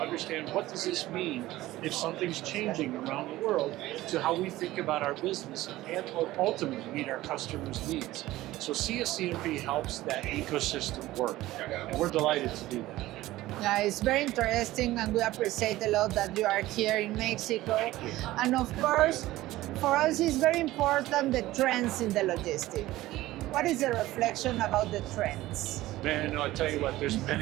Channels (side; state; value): left; quieter; 16.7 dB